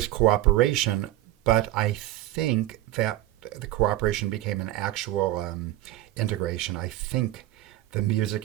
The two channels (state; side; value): quieter; left; 15.4 dB